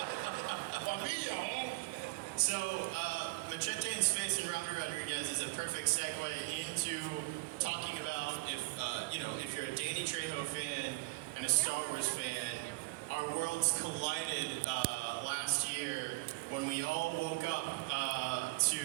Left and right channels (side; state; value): left; quieter; 24.3 dB